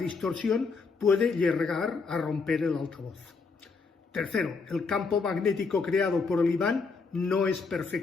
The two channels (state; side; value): quieter; right; 4.6 dB